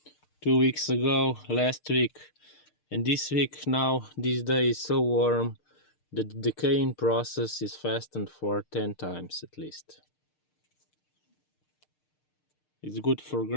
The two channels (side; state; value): right; late; 6.6 ms